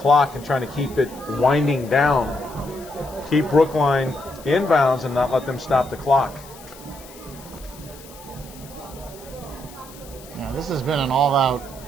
and trying to keep it winding down. Keep Brookline inbounds and not let them stop the clock. Yeah, this has been an all-out,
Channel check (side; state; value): left; noise; hiss, 20 dB below the sound